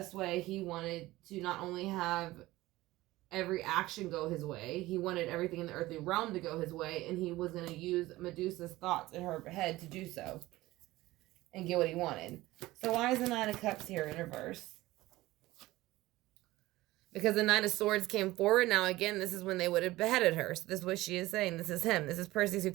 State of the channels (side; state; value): left; quieter; 18.0 dB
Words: way he wanted to not only have every action go his way, he wanted everything in the earthly realm to go his way, and he was going to use Medusa's thoughts in her head to do so and get what he wanted. So why is the Nine of Cups here in reverse? Because the Knight of Swords came forward. Now again, this is when they would have beheaded her. So this is what she is saying. This is him. This is Perseus who